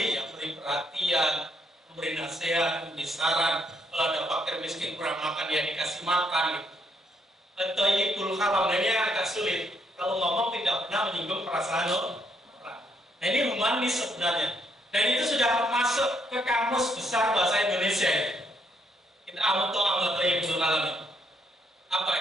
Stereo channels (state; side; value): normal; both; correlation 0.73